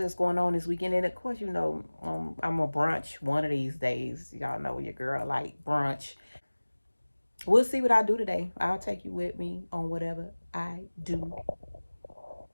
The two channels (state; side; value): inverted; both; correlation -1.00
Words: going on this weekend. And of course, I'm a brunch one of these days. Y'all know your girl like brunch. We'll see what I do today. I'll take you with me on whatever I do.